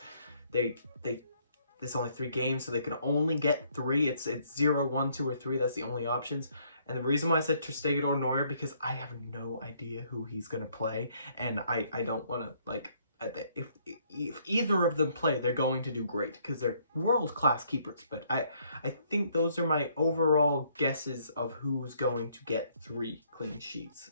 there's only 3 games, so they can only get 3. It's 0, 1, 2, or 3. That's the only options. And the reason why I said Ter Stegen or Neuer, because I have no idea who he's going to play. And I don't want to, like, if either of them play, they're going to do great because they're world-class keepers. But I think those are my overall guesses of who's going to get 3 clean sheets,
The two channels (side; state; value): both; inverted; correlation -0.67